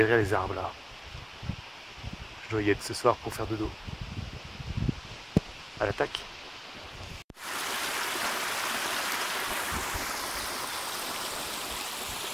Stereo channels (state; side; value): identical; both; correlation 1.00